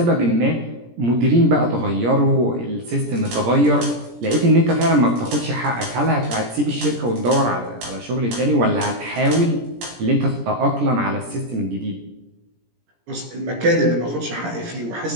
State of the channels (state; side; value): late; left; 17 ms